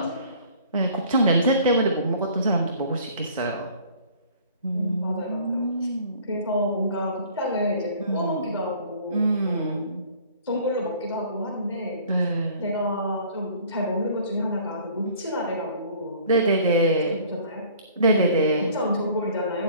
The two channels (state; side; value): inverted; both; correlation -0.52